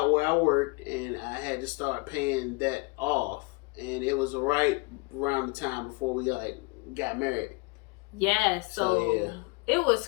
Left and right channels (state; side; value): quieter; right; 27.7 dB